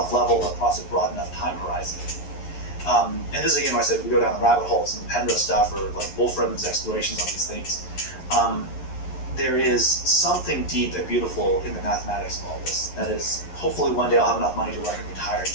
level across a broad enough time horizon. And this is again, when I said we go down the rabbit holes and Penrose stuff, or like Wolfram's explorations on these things. There is something deep and beautiful in the mathematics of all this. That is, hopefully one day I'll have enough money to work and retire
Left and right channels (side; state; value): right; late; 11 ms